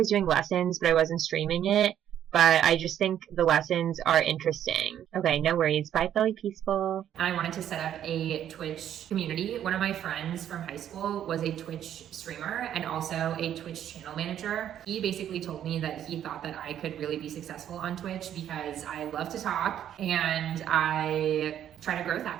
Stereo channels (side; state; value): left; quieter; 10.4 dB